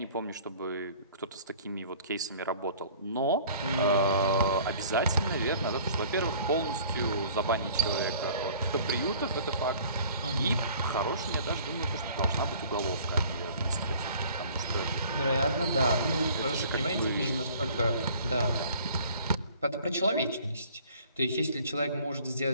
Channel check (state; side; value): inverted; both; correlation -0.51